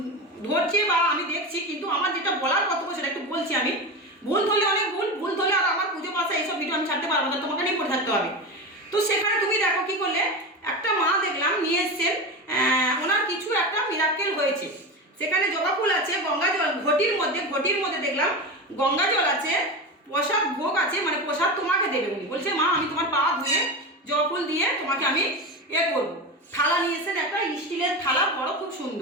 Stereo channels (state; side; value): normal; both; correlation 0.22